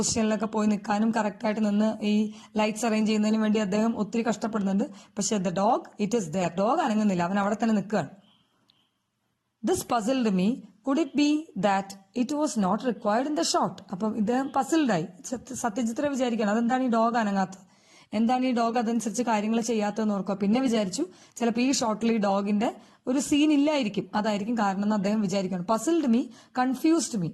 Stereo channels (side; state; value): both; identical; correlation 1.00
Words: പോയി നിൽക്കാനും കറക്റ്റായിട്ട് നിന്ന് ഈ ലൈറ്റ്സ് അറേഞ്ച് ചെയ്യുന്നതിന് വേണ്ടി അദ്ദേഹം ഒത്തിരി കഷ്ടപ്പെടുന്നുണ്ട്. പക്ഷെ the dog it is there. Dog അനങ്ങുന്നില്ല, അവൻ അവിടെ തന്നെ നിൽക്കുകയാണ്. This puzzled me. Could it be that it was not required in the shot? അപ്പം ഇദ്ദേഹം പസിൽഡായി. സത്യജിത്ര വിചാരിക്കണം അതെന്താണ് ഈ ഡോഗ് അനങ്ങാത്തത്, എന്താണ് ഈ ഡോഗ് അതനുസരിച്ച് കാര്യങ്ങൾ ചെയ്യാത്തതെന്ന് ഓർക്കുക. പിന്നെ വിചാരിച്ചു ചിലപ്പോൾ ഈ ഷോട്ടിൽ ഈ ഡോഗിന്റെ ഒരു സീൻ ഇല്ലായിരിക്കും, അതായിരിക്കും കാരണം എന്ന് അദ്ദേഹം വിചാരിക്കണം. പസിൽഡ് മീ, കൺഫ്യൂസ്ഡ് മീ,